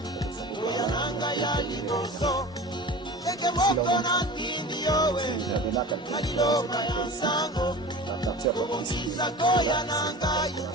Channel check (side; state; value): both; normal; correlation 0.35